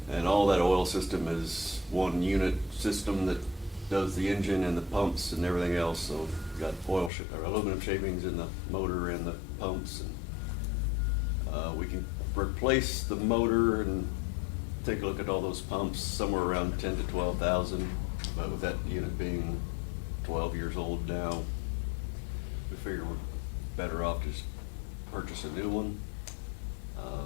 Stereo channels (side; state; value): right; drops out; at 7.1 s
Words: And all that oil system is one unit system that does the engine and the pumps and everything else. So we've got aluminum shavings in the motor and the pumps, and we can replace the motor and take a look at all those pumps, somewhere around 10 to 12,000. But with that unit being 12 years old now, we figure we're better off just purchase a new one.